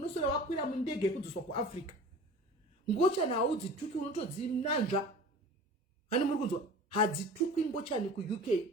wakwira mundege kudzoswa kuAfrica. Ngochani haudzituki unotodzinanzva. Hani muri kunzwa? Hadzituki ngochani KuUK.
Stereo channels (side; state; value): both; normal; correlation 0.40